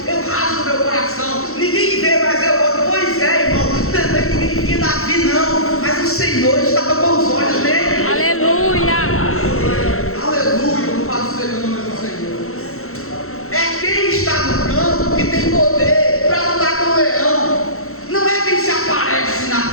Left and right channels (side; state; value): right; late; 0.63 ms